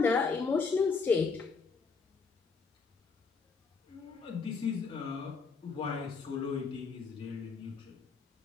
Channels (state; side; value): quieter; right; 4.9 dB